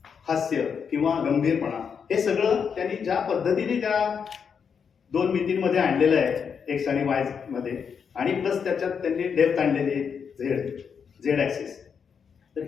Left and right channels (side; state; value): right; quieter; 6.7 dB